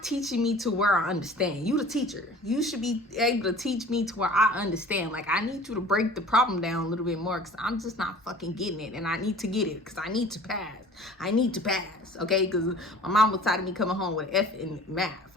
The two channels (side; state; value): both; normal; correlation 0.46